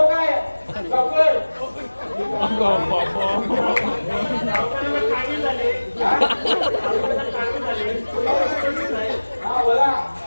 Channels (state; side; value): inverted; both; correlation -1.00